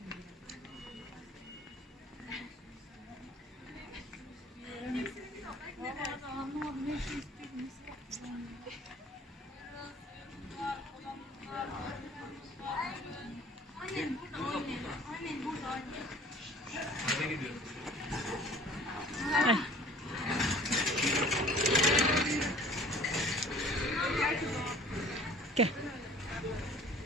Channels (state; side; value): normal; both; correlation 0.49